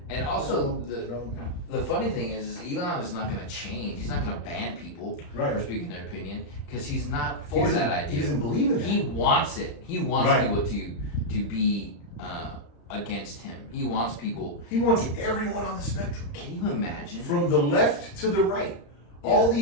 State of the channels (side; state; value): right; late; 35 ms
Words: And also, the funny thing is Elon is not going to change. He's not going to ban people for speaking their opinion, because he's not for that idea. He doesn't believe in that. He wants it. He wants people to be against him. He wants people. He wants everyone on the spectrum. Can you imagine? From the left to the right. All